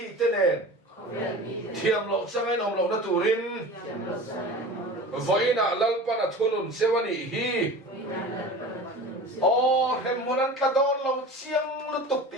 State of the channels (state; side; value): normal; both; correlation 0.36